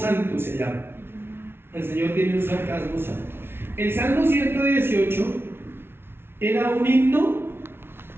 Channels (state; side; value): late; left; 0.11 ms